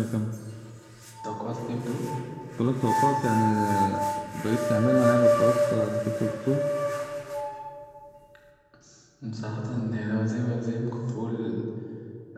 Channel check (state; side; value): identical; both; correlation 1.00